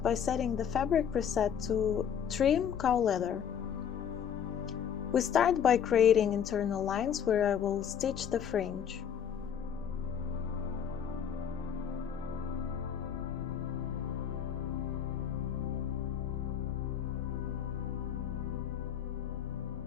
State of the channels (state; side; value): quieter; right; 8.3 dB